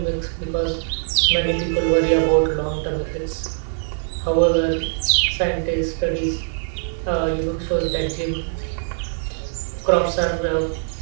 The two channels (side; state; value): left; silent; digital silence